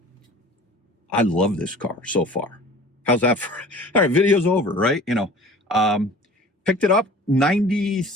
love this car so far. How's that for? All right, video's over, right? You know, picked it up,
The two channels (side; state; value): both; normal; correlation 0.44